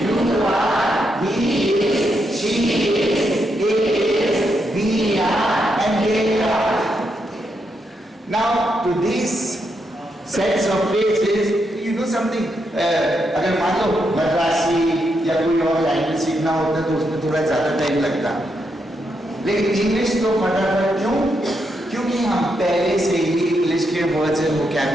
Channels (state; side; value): normal; both; correlation 0.81